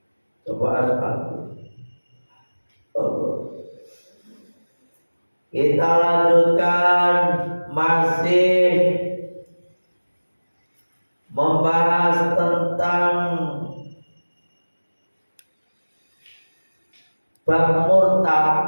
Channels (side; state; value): both; inverted; correlation -1.00